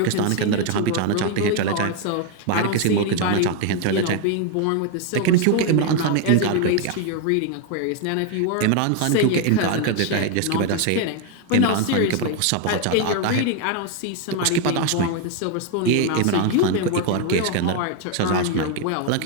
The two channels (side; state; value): both; different; correlation 0.01